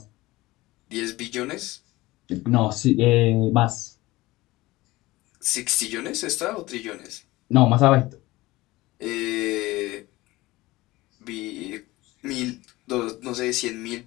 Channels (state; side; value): quieter; right; 19.4 dB